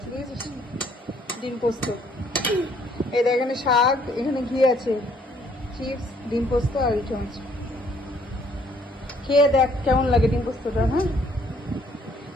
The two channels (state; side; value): normal; both; correlation 0.64